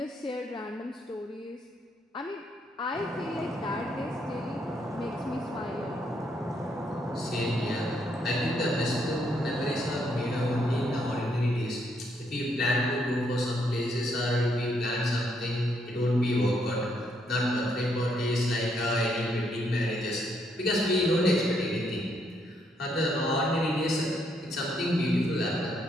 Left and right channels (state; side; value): normal; both; correlation 0.74